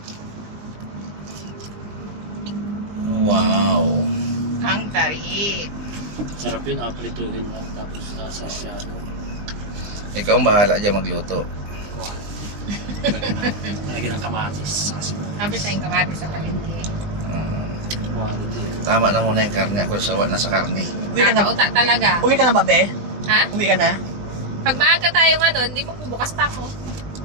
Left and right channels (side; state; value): left; late; 20 ms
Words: Wow. Ang tari. Sarap yun, aprituhin lang, tapos sa shadow. Ikaw ang bahala dyan magluto. Kuhan. Lagyan ng kamatis. Kasi Sabi tayong kamati sa palengke. quality. Tama na muna yung karne. Ako sawa na sa karne. Uwi ka na. Kakauta talaga. Uwi ka na ba, be? Ha? Uwi ka na? Pag maaga tayo nga doon, hindi magbubukas pa ako.